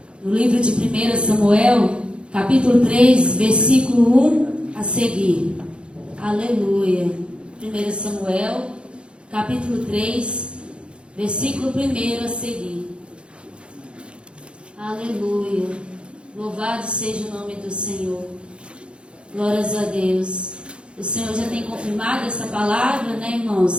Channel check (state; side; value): late; left; 0.056 ms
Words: no livro de 1 Samuel, capítulo 3, versículo 1 a seguir. Aleluia. 1 Samuel, capítulo 3, versículo 1 a seguir. Aleluia. Louvado seja o nome do Senhor. Glórias a Deus. O Senhor já tem confirmado essa palavra, né,